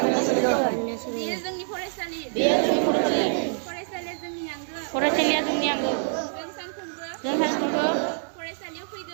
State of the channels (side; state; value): left; silent; 61 dB below the other